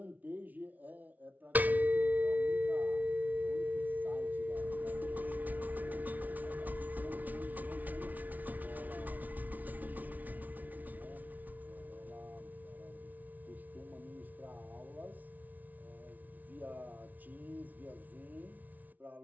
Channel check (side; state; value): left; late; 0.077 ms